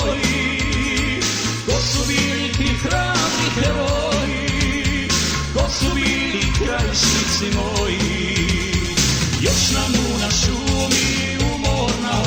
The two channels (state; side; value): identical; both; correlation 1.00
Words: ko su bili ti hrabri heroji, ko su bili krajišnici moji. Još nam u na šumi umorna